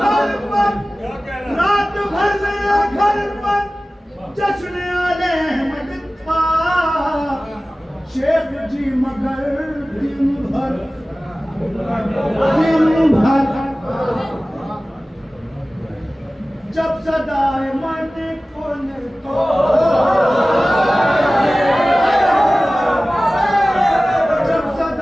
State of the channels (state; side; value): normal; both; correlation 0.97